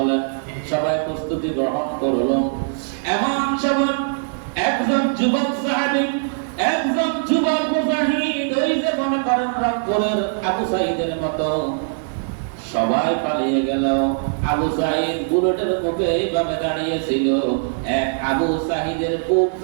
সবাই প্রস্তুতি গ্রহণ করল। এমন সময় একজন যুবক সাহাবী, একজন যুবক মুজাহিদ, ওই যে মনে করেন রংপুরের আবু সাঈদের মতো, সবাই পালিয়ে গেল। আবু সাঈদ বুলেটের মুখে এইভাবে দাঁড়িয়েছিল। এক আবু সাঈদের বুক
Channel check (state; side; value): silent; left; digital silence